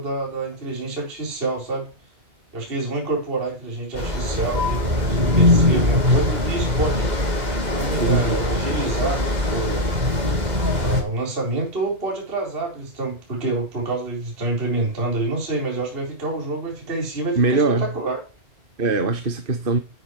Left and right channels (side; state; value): left; late; 2.0 ms